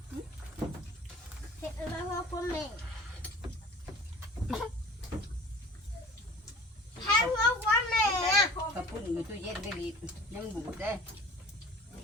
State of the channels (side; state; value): both; normal; correlation 0.44